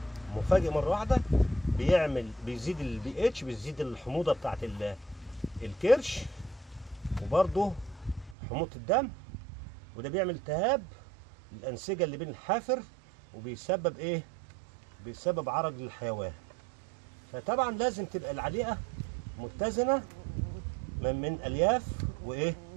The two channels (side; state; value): left; drops out; at 8.3 s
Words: مفاجئ مره واحده بيزيد البي اتش، بيزيد الحموضه بتاعت الكرش، وبرضه حموضه الدم، وده بيعمل التهاب الانسجه اللي بين الحافر، وبيسبب ايه بيسبب عرج للحيوان. فطبعا لازم تبقى العليقه متزنه من الياف وايه